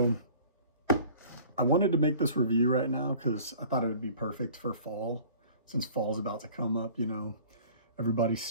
I wanted to make this review right now because I thought it would be perfect for fall, since fall's about to come up. Everybody's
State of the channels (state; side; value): inverted; both; correlation -0.48